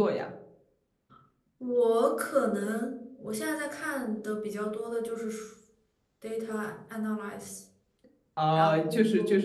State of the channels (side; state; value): both; identical; correlation 1.00